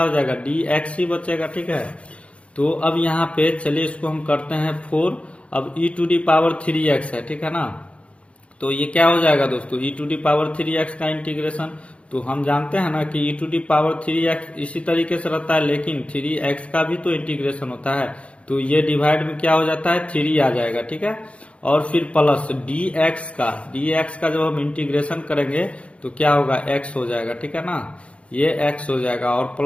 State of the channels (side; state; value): right; late; 0.061 ms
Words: हो जाएगा dx ही बचेगा, ठीक है। तो अब यहाँ पे चलिए इसको हम करते हैं 4, अब e⁻³ है, ठीक है ना। तो ये क्या हो जाएगा दोस्तों e⁻³ का इंटीग्रेशन, तो हम जानते हैं ना कि e⁻³ इसी तरीके से रहता है, लेकिन 3x का भी तो इंटीग्रेशन होता है, तो ये डिवाइड में क्या हो जाता है 3 आ जाएगा, ठीक है। और फिर प्लस dx का जब हम इंटीग्रेशन करेंगे तो क्या होगा x हो जाएगा, ठीक है ना, ये x हो जाएगा और